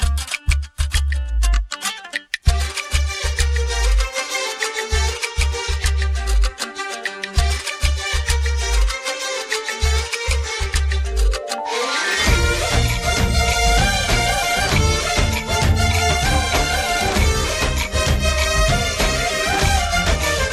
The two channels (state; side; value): identical; both; correlation 1.00